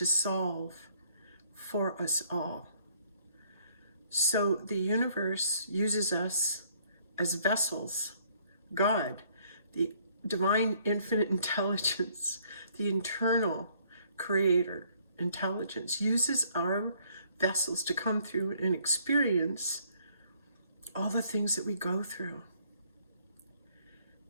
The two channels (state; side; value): inverted; both; correlation -0.64